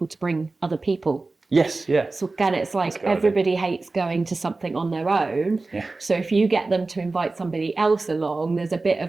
to bring other people. Yes, yeah. So again, it's like everybody hates going to something on their own. Yeah. So if you get them to invite somebody else along, there's a bit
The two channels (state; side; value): quieter; left; 3.5 dB